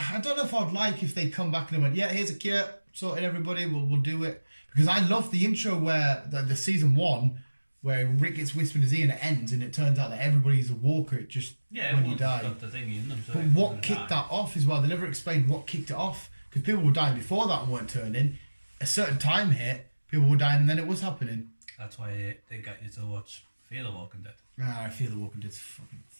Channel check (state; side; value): inverted; both; correlation -1.00